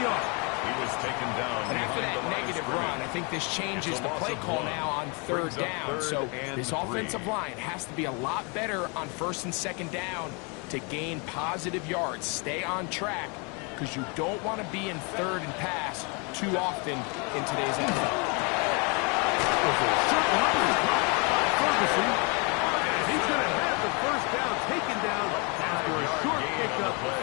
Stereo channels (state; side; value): quieter; right; 32.7 dB